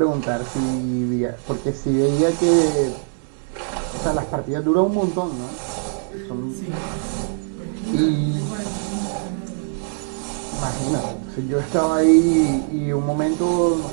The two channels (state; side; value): silent; left; digital silence